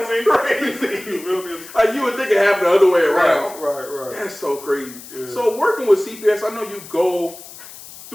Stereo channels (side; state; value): left; noise; hiss, 16 dB below the sound